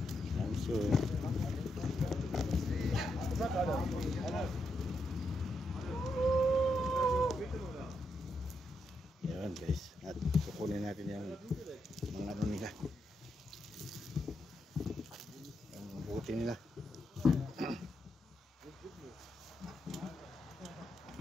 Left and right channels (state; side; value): normal; both; correlation 0.82